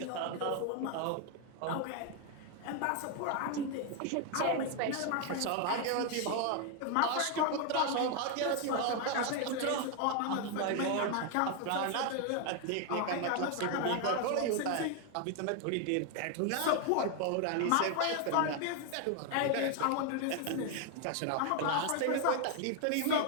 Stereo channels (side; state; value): both; different; correlation 0.01